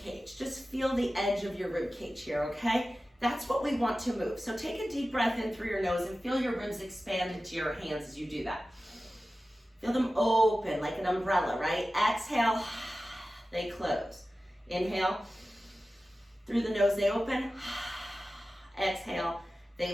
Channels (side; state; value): both; normal; correlation 0.95